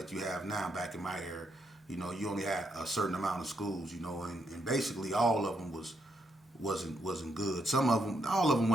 you have now. Back in my era, you only had a certain amount of schools. And basically all of them wasn't good. Some of them, all of them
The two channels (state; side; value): normal; both; correlation 0.78